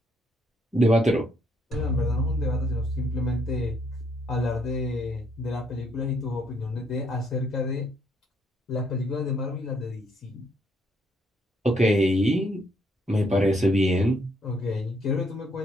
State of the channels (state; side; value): normal; both; correlation 0.71